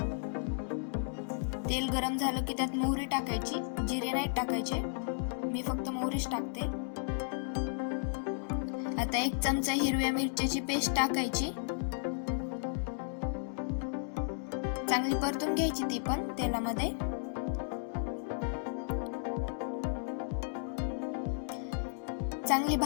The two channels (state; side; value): silent; right; digital silence